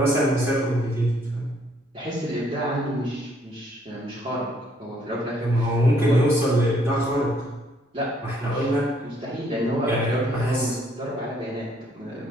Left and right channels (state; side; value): normal; both; correlation 0.67